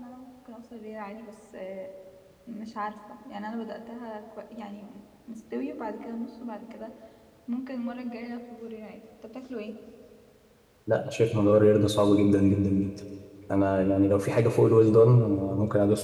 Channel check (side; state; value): both; identical; correlation 1.00